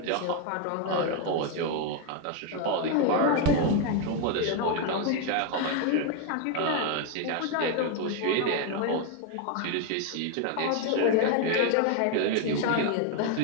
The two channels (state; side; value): different; both; correlation 0.01